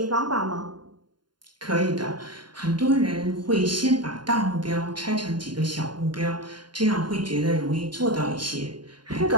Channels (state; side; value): late; left; 0.71 ms